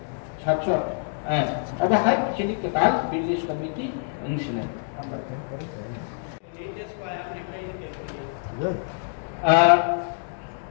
700 अब हाय चिनि कताल भिलेज कमिटी अंशने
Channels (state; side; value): silent; right; digital silence